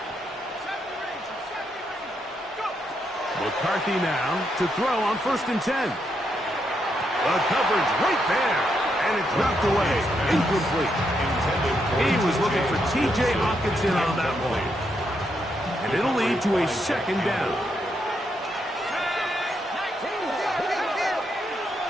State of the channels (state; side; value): normal; both; correlation 0.79